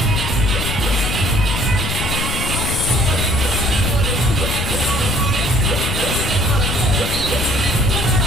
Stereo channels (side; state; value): left; noise; rumble, 3 dB below the sound